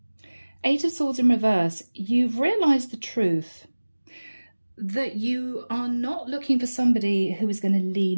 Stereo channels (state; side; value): inverted; both; correlation -1.00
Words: Eight of Swords in reverse. You've realised the truth that you are not looking for somebody who is going to